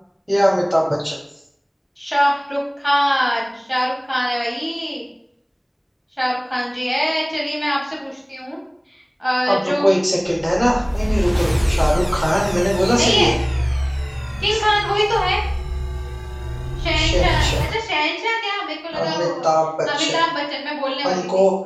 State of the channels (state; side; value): identical; both; correlation 1.00